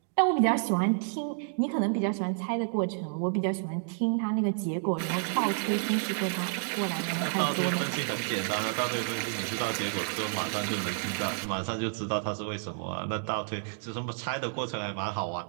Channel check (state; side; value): silent; left; digital silence